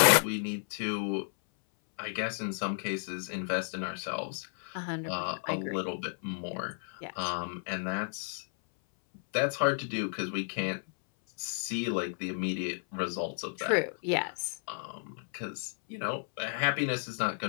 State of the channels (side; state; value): right; silent; 56 dB below the other